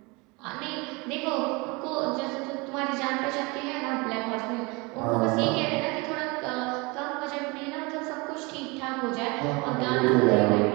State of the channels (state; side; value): quieter; left; 26.8 dB